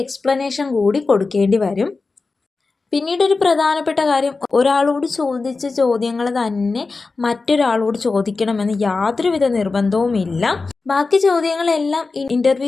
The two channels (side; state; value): right; quieter; 4.0 dB